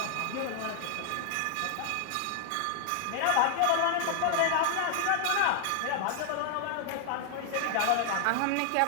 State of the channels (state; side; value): different; both; correlation 0.00